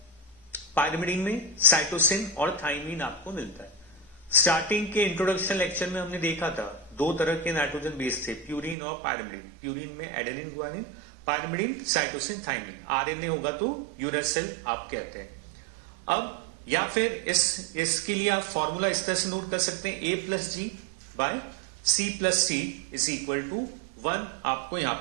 पायरिमिडीन में साइटोसिन और थाइमिन आपको मिलता है। स्टार्टिंग के इंट्रोडक्शन लेक्चर में हमने देखा था दो तरह के नाइट्रोजन बेस थे, प्यूरिन और पायरिमिडीन। प्यूरिन में adenine guanine, pyrimidine cytosine thymine. RNA होगा तो यूरेसिल आप कहते हैं। अब या फिर इसके लिए आप फॉर्मूला इस तरह से नोट कर सकते हैं, A plus G by C plus C is equal to 1 आपको यहां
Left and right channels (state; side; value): drops out; left; at 8.8 s